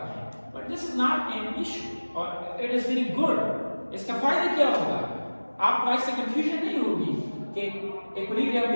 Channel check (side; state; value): both; inverted; correlation -1.00